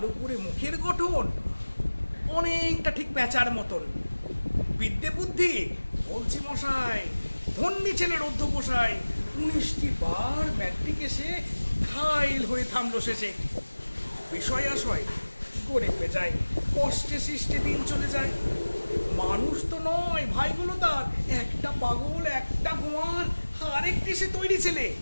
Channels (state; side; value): inverted; both; correlation -1.00